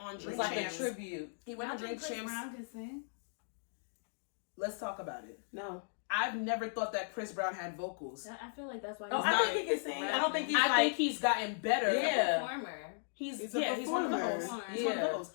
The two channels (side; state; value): right; silent; digital silence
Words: Drink Champs. Champs. It's like a tribute. He went on Drink Champs. Let's talk about it. No. I've never thought that Chris Brown had vocals. I feel like that's why. No, I think he can sing. I don't think he's I think he's gotten better. Yeah. Performer. He's one of those. He's one of those.